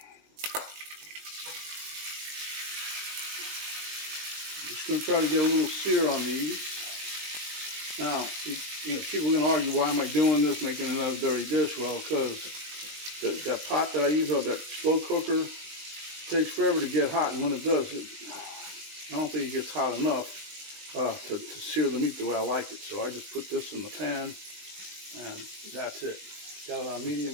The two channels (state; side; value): late; left; 20 ms